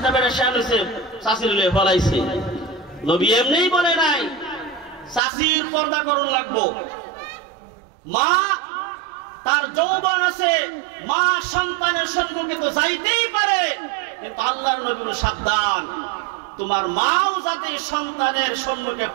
বেড়ে শ্যান হয়েছে, শাশির লিয়ে ফলাইছে। নবী এমনি বলে নাই শাশির পর্দা করন লাগবো। মা তার যৌবন আছে, মা সন্তানের সম্মুখে তো যাইতেই পারে, কিন্তু আল্লাহর নবী সাবধান, তোমার মাও যাতে সন্তানের সম্মুখে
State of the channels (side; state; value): left; drops out; at 5.2 s